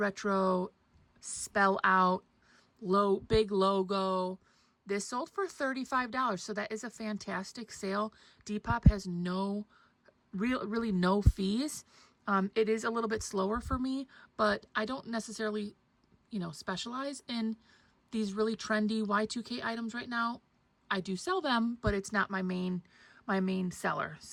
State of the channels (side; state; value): both; identical; correlation 1.00